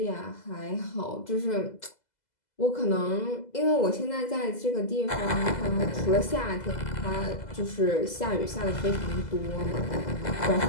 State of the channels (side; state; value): right; late; 2.0 ms